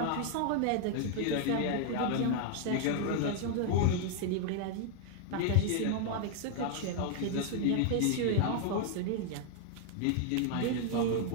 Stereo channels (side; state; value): both; different; correlation 0.00